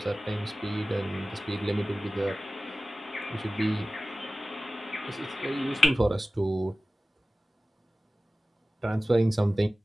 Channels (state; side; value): normal; both; correlation 0.96